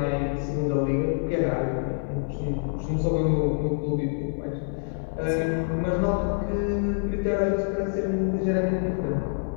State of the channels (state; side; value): silent; right; digital silence